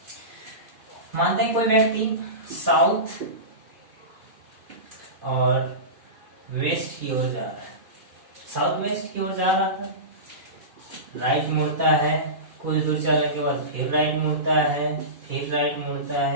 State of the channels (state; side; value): late; left; 2.5 ms